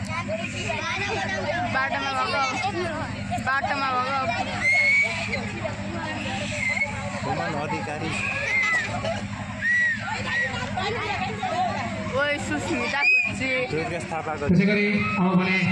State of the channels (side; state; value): both; identical; correlation 1.00